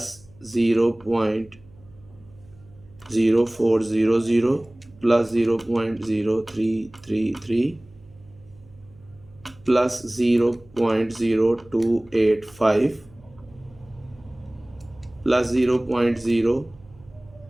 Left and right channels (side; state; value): right; noise; hum, 26 dB below the sound